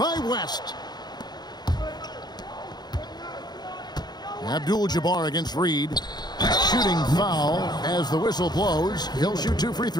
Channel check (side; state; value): right; late; 0.20 ms